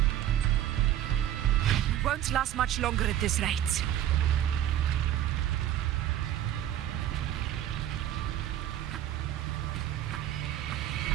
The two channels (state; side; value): quieter; left; 11.8 dB